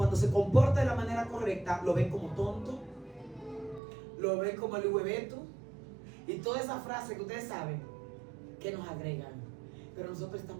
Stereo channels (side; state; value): left; drops out; at 3.8 s